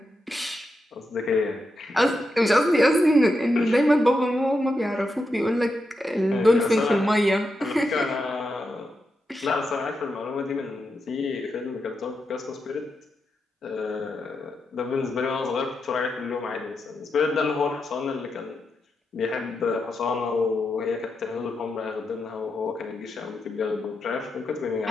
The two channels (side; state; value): both; normal; correlation 0.86